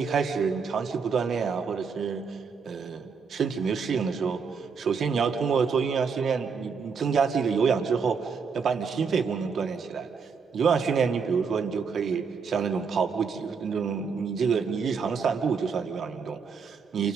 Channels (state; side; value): quieter; left; 5.6 dB